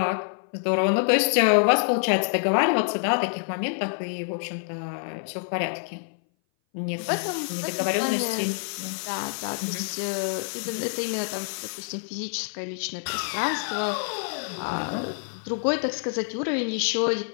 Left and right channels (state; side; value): silent; right; 58 dB below the other